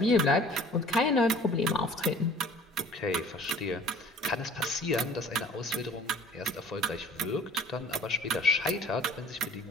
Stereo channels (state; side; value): normal; both; correlation 0.50